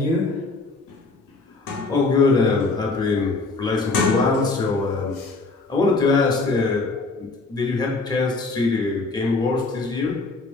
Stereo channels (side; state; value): right; quieter; 3.6 dB